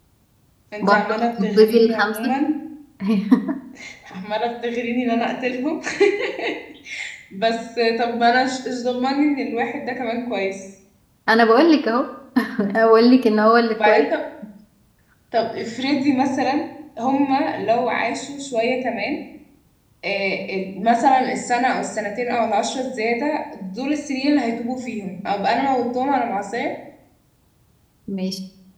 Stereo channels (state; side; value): identical; both; correlation 1.00